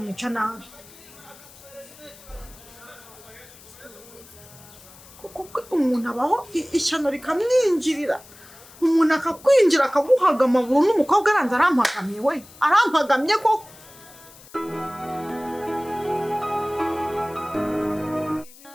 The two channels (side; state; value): left; noise; hiss, 21 dB below the sound